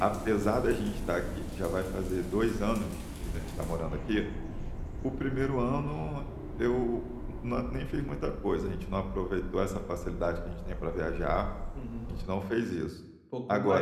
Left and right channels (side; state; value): both; identical; correlation 1.00